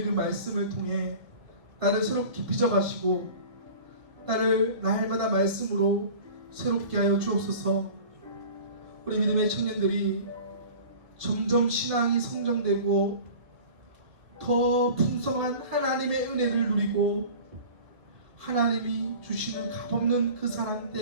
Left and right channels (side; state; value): left; late; 2.2 ms